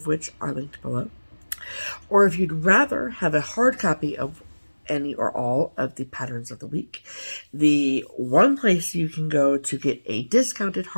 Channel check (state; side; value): inverted; both; correlation -1.00